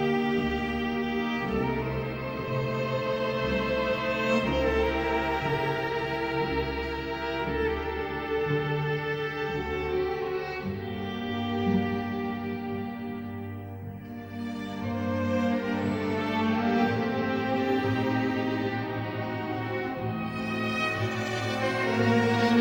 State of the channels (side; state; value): both; identical; correlation 1.00